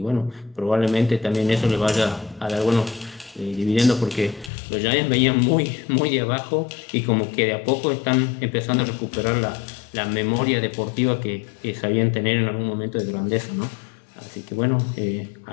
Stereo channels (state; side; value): drops out; right; at 4.5 s